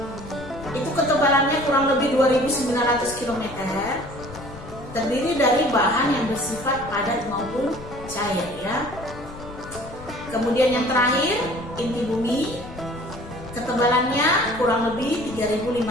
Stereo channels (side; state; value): left; noise; rumble, 15 dB below the sound